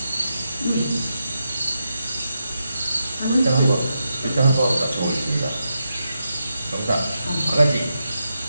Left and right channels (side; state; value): both; inverted; correlation -0.86